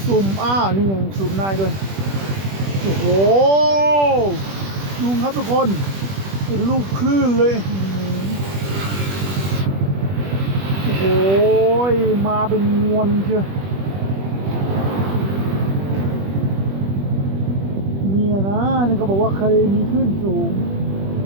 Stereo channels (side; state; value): left; late; 21 ms